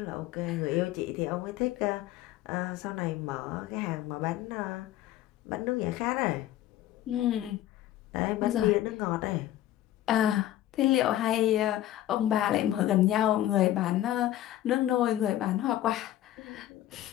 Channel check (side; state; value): right; quieter; 13.5 dB